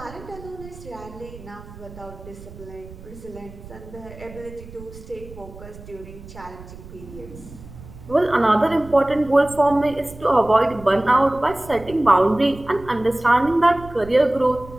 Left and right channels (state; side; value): noise; right; rumble, 17 dB below the sound